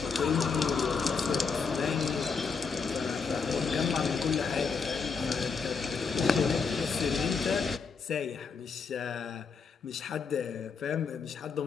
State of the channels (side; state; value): right; quieter; 5.2 dB